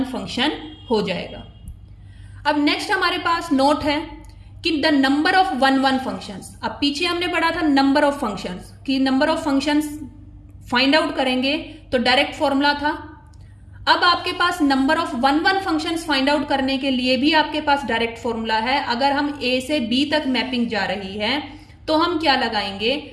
फंक्शन हो जाएगा। अब नेक्स्ट हमारे पास नोट है कि द नंबर ऑफ 1 1 फंक्शंस। अब पीछे हमने पढ़ा था नंबर ऑफ फंक्शंस, कि number of functions find out करेंगे तो डायरेक्ट फॉर्मूला था। अब आपके पास number of 1 1 functions find out करने के लिए भी आपके पास डायरेक्ट फॉर्मूला है। अगर हम ए से बी तक मैपिंग जा रही है तो हम क्या लगाएंगे,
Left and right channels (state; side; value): identical; both; correlation 1.00